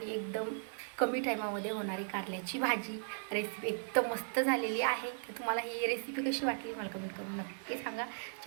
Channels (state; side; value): silent; left; 53 dB below the other